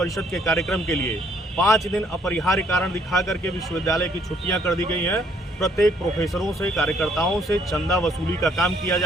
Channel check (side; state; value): both; normal; correlation 0.65